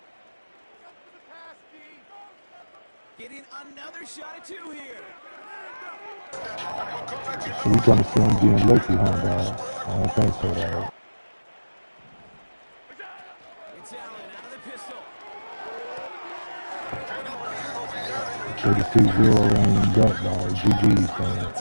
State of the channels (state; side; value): inverted; both; correlation -1.00